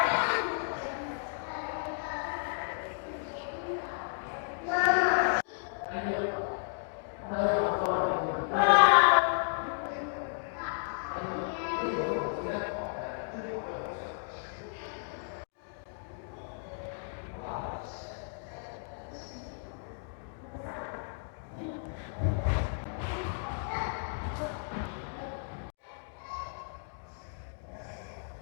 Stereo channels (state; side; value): silent; right; digital silence